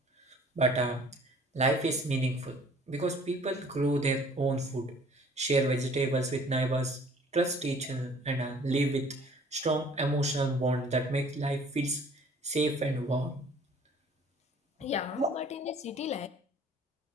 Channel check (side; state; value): both; normal; correlation 0.53